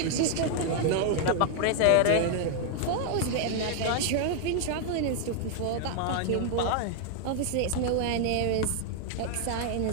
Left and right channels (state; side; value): different; both; correlation 0.00